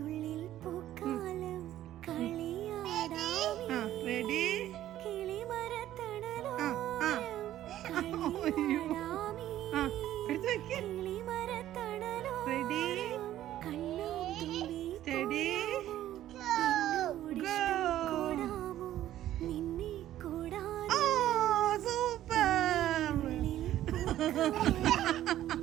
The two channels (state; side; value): quieter; left; 13.0 dB